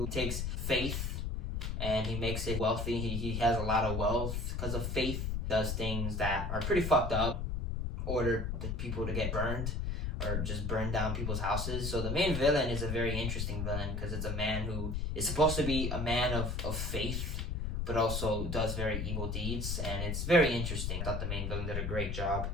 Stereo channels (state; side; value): noise; left; rumble, 1 dB below the sound